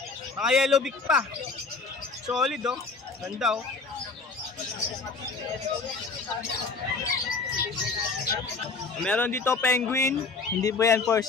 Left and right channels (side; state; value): right; quieter; 4.3 dB